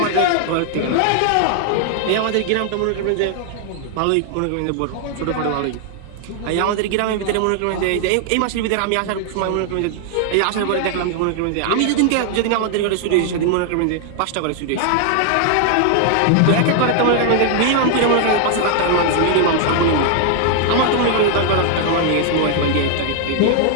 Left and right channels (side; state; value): both; different; correlation 0.00